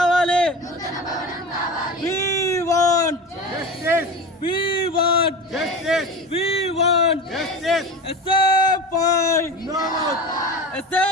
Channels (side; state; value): both; normal; correlation 0.29